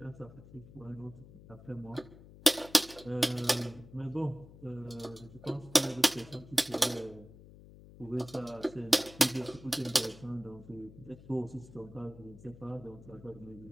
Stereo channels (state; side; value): noise; left; hum, 19 dB below the sound